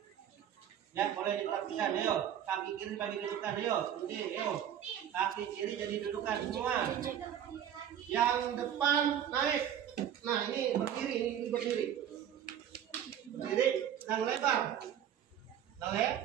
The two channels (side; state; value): left; quieter; 9.8 dB